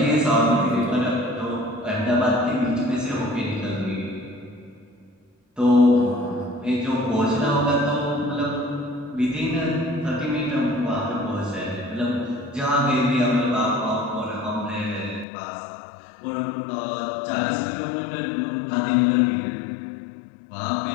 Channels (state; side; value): drops out; right; at 15.2 s